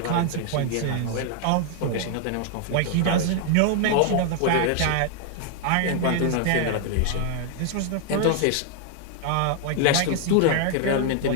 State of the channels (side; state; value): both; different; correlation 0.00